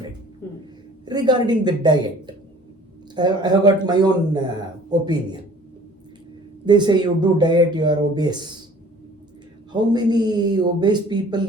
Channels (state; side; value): normal; both; correlation 0.50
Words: Regarding the diet, I have got my own opinion. They say you do diet, you are obese. How many obese people,